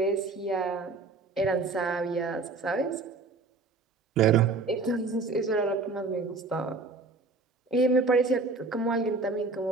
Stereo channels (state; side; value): quieter; left; 3.8 dB